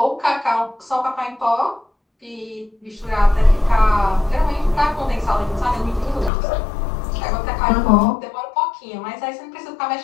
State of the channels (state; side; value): drops out; right; at 6.3 s